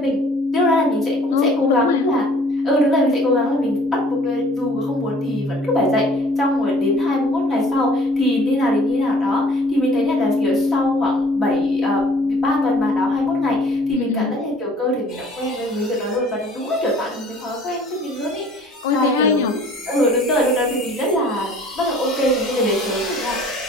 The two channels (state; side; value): normal; both; correlation 0.53